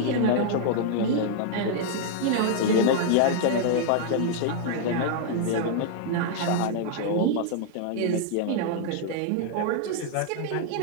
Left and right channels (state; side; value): different; both; correlation -0.01